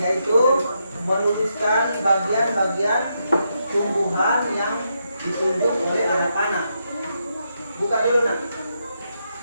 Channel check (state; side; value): inverted; both; correlation -0.82